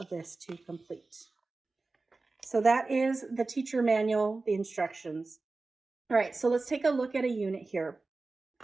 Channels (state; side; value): quieter; left; 3.6 dB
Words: this to complete. So that is the teacher manual, the instructions. All right, so let's take a look at a unit here.